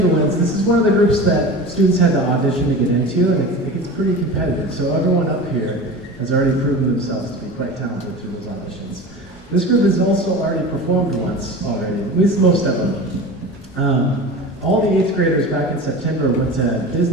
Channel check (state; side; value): normal; both; correlation 0.32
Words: This is one of the groups that students had to audition to get into, and it gets pretty competitive. So everyone up here has already proven themselves to be quite talented through those auditions. This group has also already performed once already, at least most of them. All the 8th graders back in September went to